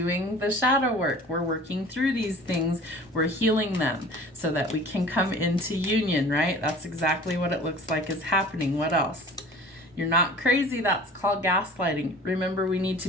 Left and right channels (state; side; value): normal; both; correlation 0.44